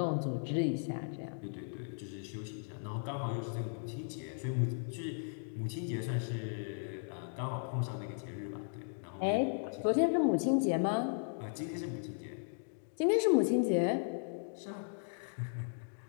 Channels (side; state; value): right; silent; digital silence